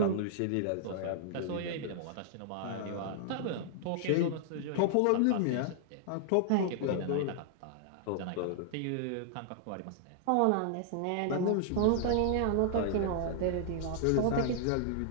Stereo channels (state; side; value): different; both; correlation -0.01